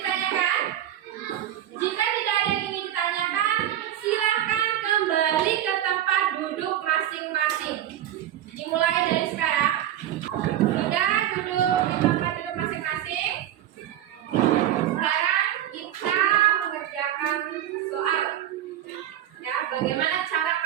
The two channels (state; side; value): quieter; left; 11.7 dB